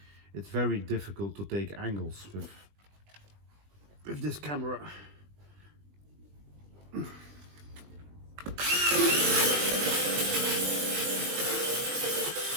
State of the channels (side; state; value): left; late; 20 ms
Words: it's very difficult to take angles with this camera.